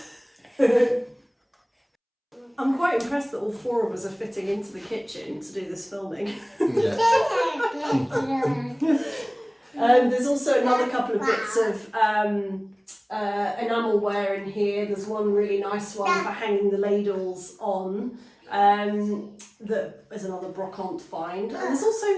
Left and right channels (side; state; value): both; identical; correlation 1.00